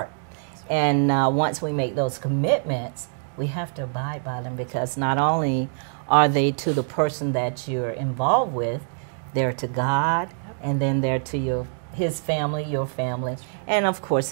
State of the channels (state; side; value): silent; left; 62 dB below the other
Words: And once we make those commitments, we have to abide by them, because not only are they to the person that you're involved with, they're to God, and then they're to his family, your family, and of